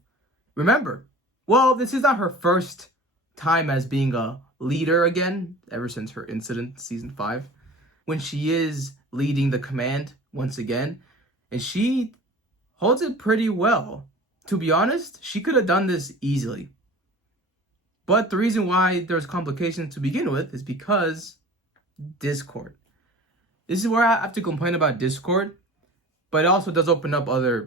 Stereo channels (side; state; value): both; normal; correlation 0.40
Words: Remember, well, this is not her first time as being a leader again, ever since her incident season 5. When she is leading the command once again, and she holds it pretty well. To be honest, she could have done this easily. But the reason why there's complications to begin with is because Discord. This is where I have to complain about Discord, but it also does open up other